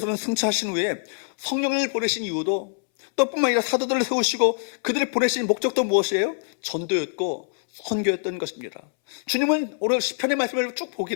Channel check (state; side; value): silent; right; 62 dB below the other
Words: 승천하신 후에 성령을 보내신 이유도 또 뿐만 아니라 사도들을 세우시고 그들을 보내신 목적도 무엇이에요? 전도였고 선교였던 것입니다. 주님은 오늘 시편의 말씀을 쭉 보게